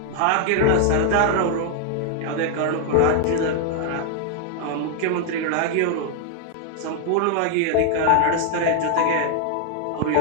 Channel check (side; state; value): both; different; correlation 0.00